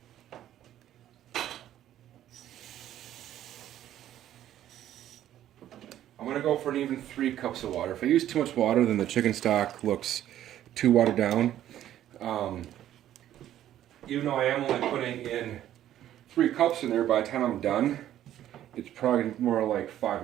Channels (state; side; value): quieter; left; 12.0 dB